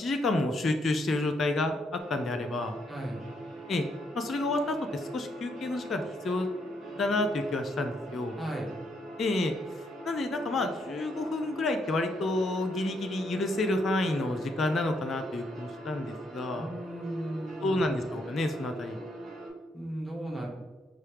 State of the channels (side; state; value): both; normal; correlation 0.75